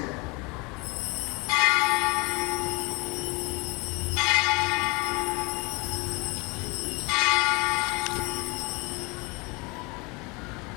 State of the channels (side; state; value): right; quieter; 26.6 dB